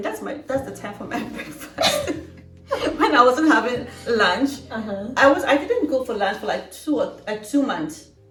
that's the time for my breakfast. When I wasn't having lunch, I didn't go for lunch for like 2 months.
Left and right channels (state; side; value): identical; both; correlation 1.00